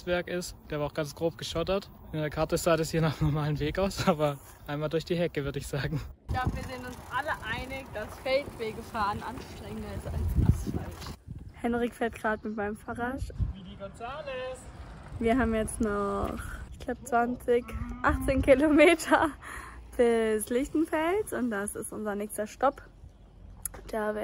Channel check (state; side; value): identical; both; correlation 1.00